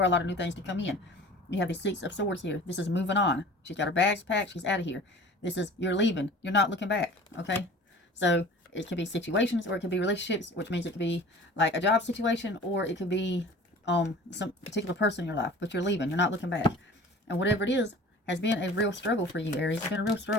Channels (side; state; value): both; normal; correlation 0.43